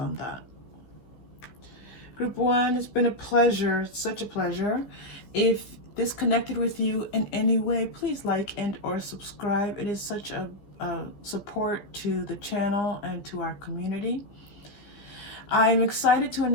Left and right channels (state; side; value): late; right; 15 ms